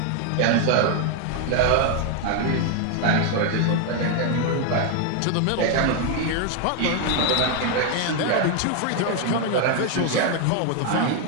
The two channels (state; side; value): different; both; correlation 0.00